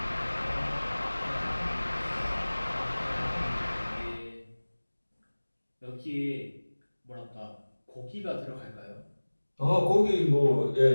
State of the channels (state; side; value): inverted; both; correlation -1.00